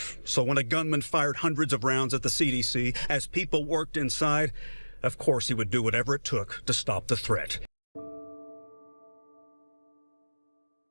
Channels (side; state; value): both; inverted; correlation -1.00